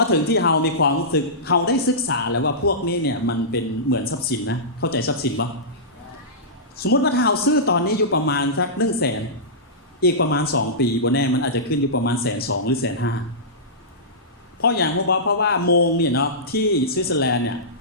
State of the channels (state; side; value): normal; both; correlation -0.17